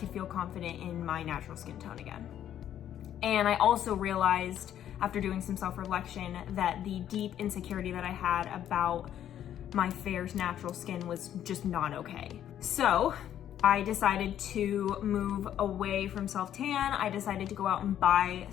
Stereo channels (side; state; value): right; quieter; 10.7 dB